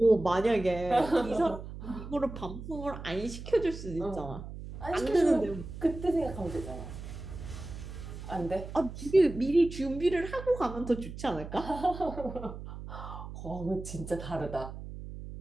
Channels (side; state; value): right; noise; hum, 10 dB below the sound